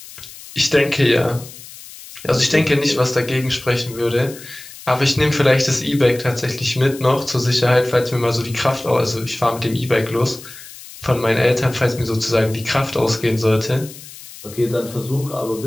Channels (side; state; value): left; noise; hiss, 16 dB below the sound